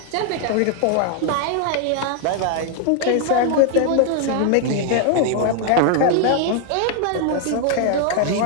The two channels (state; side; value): different; both; correlation 0.00